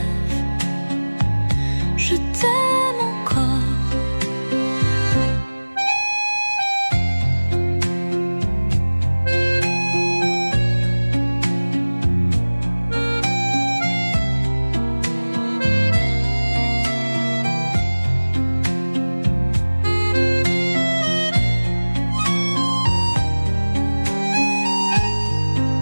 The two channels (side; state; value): both; inverted; correlation -1.00